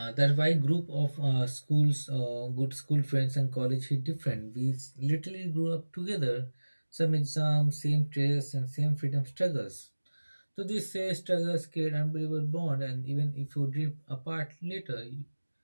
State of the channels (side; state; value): both; inverted; correlation -1.00